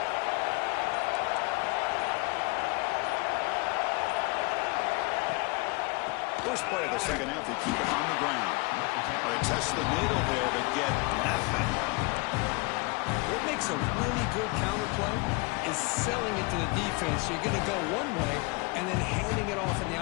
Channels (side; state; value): right; quieter; 27.0 dB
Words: First play of the second half, they keep it on the ground. They test the middle there, but get nothing. What makes a really good counterplay is selling it to the defense. So you're going to go one way and then handing it off in the